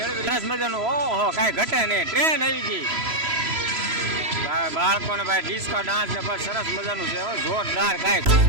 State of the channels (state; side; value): late; left; 3.0 ms